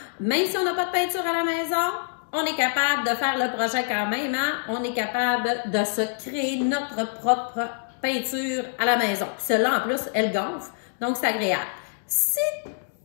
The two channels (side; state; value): right; silent; digital silence